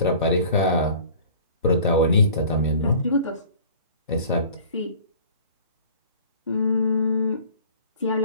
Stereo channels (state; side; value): inverted; both; correlation -0.46